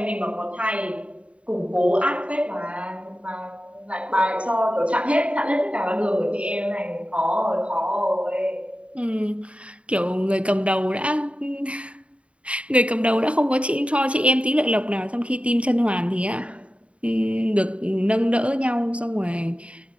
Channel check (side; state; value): left; late; 0.062 ms